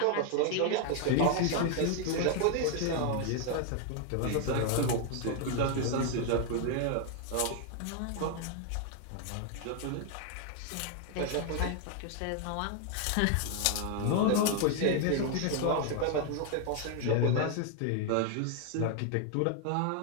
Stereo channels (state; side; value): different; both; correlation 0.00